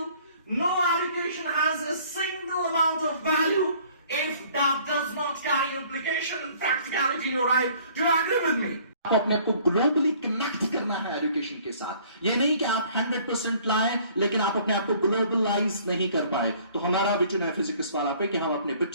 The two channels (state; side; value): inverted; both; correlation -0.56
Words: no education has a single amount of value if that does not carry implication and practicality in your life. Do you agree with me? आपको अपने आप को globally connect करना है education के साथ। ये नहीं कि आप 100% लाएं लेकिन आप अपने आप को ग्लोबलाइज नहीं कर पाए। तो हमारा विजन है फिजिक्स वाला पे कि हम अपने